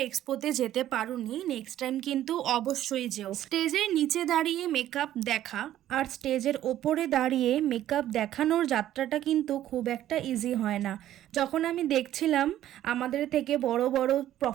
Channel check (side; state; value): left; quieter; 12.6 dB